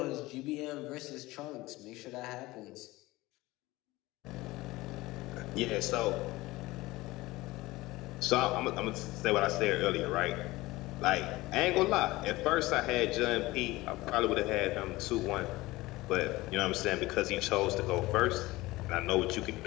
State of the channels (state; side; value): quieter; right; 19.6 dB